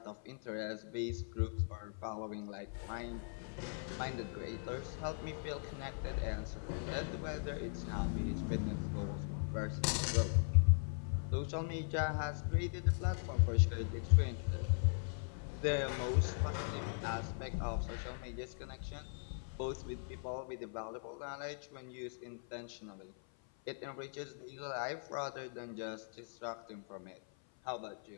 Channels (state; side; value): silent; right; 51 dB below the other